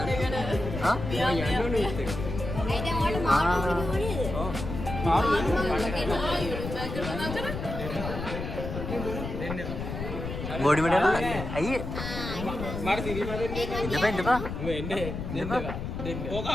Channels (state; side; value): noise; left; rumble, 6 dB below the sound